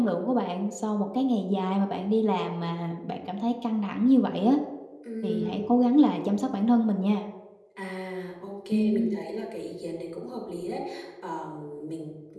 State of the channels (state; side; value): identical; both; correlation 1.00